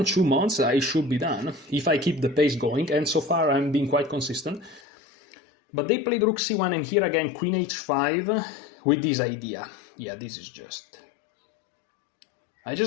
months I should be done, if I keep the pace going, and so far I'm being quite consistent. But they played rook c1, and here again queen h5 with this idea. Yeah, this is just... I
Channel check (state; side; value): drops out; right; at 4.8 s